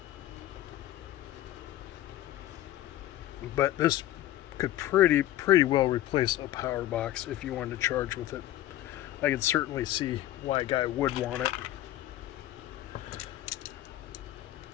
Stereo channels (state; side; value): quieter; right; 14.3 dB